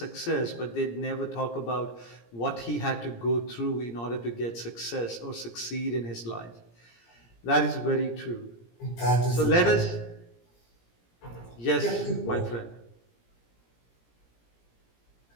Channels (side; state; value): right; late; 17 ms